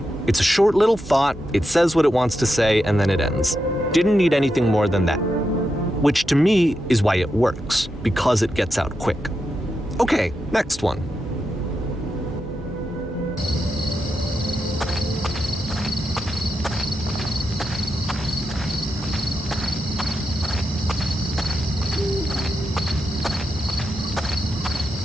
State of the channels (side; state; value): both; normal; correlation 0.86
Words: It's a short little thought, it says what it wants to say, and then it ends. Didn't need anything more than that. Which to me is why it works, because it gets out quick. Okay, next one.